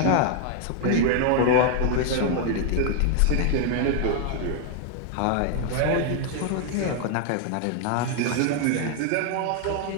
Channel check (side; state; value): both; different; correlation 0.00